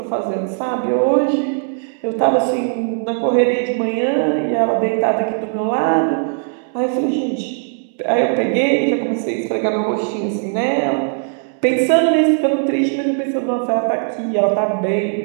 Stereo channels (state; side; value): silent; left; 67 dB below the other